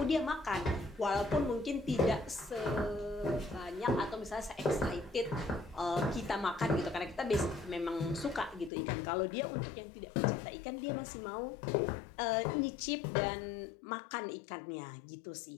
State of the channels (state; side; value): drops out; right; at 8.7 s